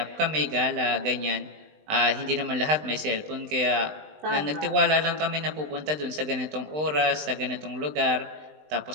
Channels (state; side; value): late; left; 20 ms